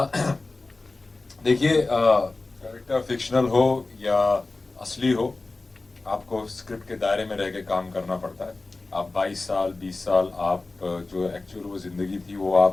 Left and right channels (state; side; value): quieter; right; 3.4 dB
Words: देखिए, कैरेक्टर फिक्शनल हो या असली हो, आपको स्क्रिप्ट के दायरे में रह के काम करना पड़ता है। आप 22 साल 20 साल आप जो एक्चुअल वो जिंदगी थी वो